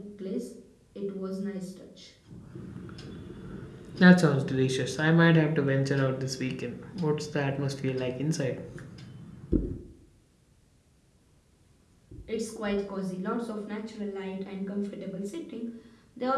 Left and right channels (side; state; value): both; identical; correlation 1.00